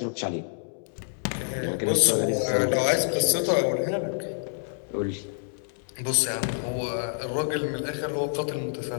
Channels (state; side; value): silent; right; digital silence